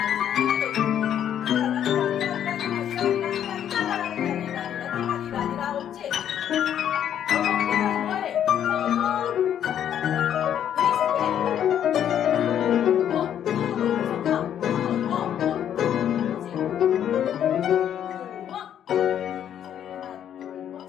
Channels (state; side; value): quieter; right; 9.8 dB